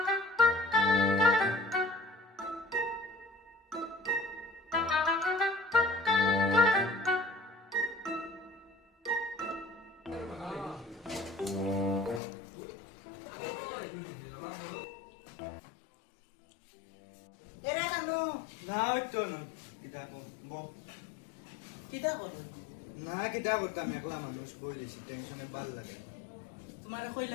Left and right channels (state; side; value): drops out; right; at 12.2 s